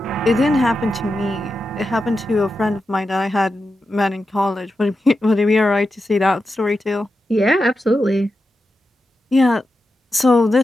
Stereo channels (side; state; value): both; normal; correlation 0.89